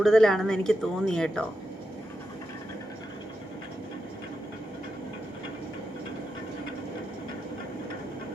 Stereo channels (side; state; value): both; normal; correlation 0.87